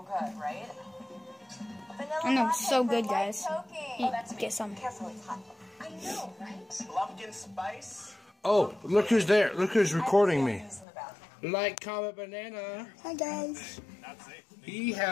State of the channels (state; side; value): drops out; right; at 10.9 s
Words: good, right? Vanilla I know, latte so for good, light guys. choking. Eat, That's get me. some. Careful, it's hot. I know, right? Pumpkin spice. Oh, look who's there. Look who's recording me. Use in the bathroom. Like, comment, banana. Hi guys. Not safe. He